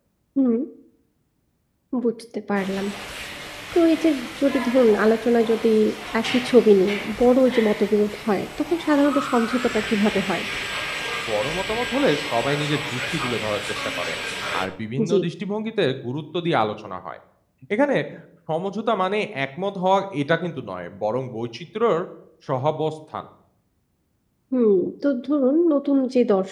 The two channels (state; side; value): identical; both; correlation 1.00